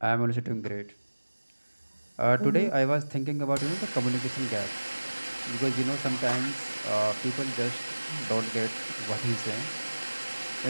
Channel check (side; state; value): both; inverted; correlation -1.00